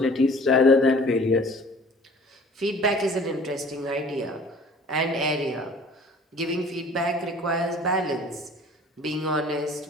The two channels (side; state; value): both; normal; correlation 0.49